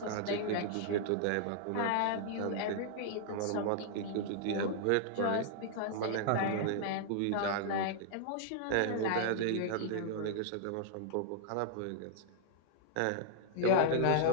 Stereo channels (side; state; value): both; different; correlation -0.01